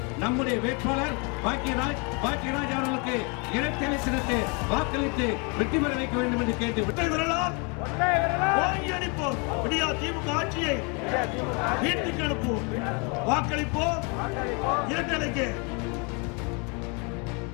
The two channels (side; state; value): right; quieter; 32.9 dB